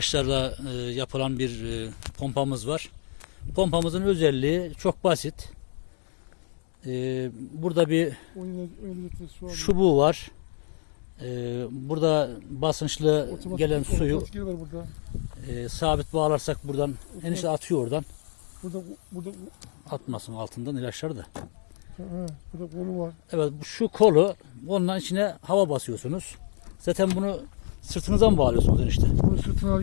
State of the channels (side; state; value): right; silent; 58 dB below the other